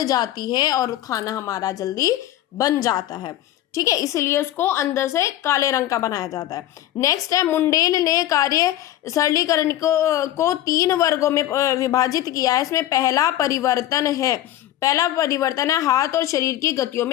है और खाना हमारा जल्दी बन जाता है। ठीक है। इसलिए उसको अंदर से काले रंग का बनाया जाता है। नेक्स्ट है, मुंडेल ने कार्य सरलीकरण को 3 वर्गों में विभाजित किया है। इसमें पहला परिवर्तन है हाथ और शरीर की गतियों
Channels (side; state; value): right; quieter; 13.5 dB